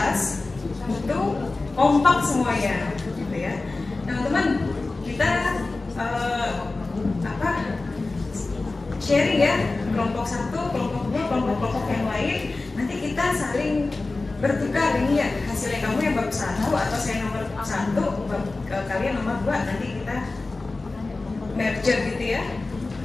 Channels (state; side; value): quieter; right; 3.4 dB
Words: itu kompak semuanya, gitu ya. Nah teman, kita sharing ya, kelompok satu, kelompok dua, kelompok yang lain. Nanti kita saling bertukar ini ya, hasilnya kamu yang bab 1 atau saya nomor 1, kalian nomor 2. Nanti kita merger gitu ya.